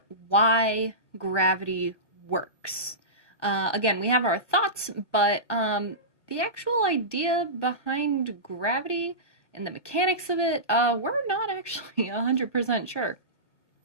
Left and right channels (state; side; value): late; right; 1.0 ms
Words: why gravity works. Again, we have our thoughts, but the actual idea behind gravity and the mechanics of it, we're not actually 100% sure.